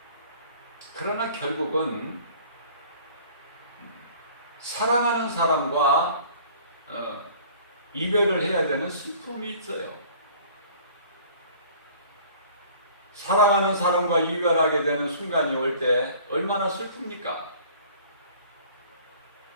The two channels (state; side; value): inverted; both; correlation -0.50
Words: 그러나 결국은 사랑하는 사람과 이별을 해야 되는 슬픔이 있어요. 사랑하는 사람과 이별하게 되는 순간이 올 때 얼마나 슬픕니까?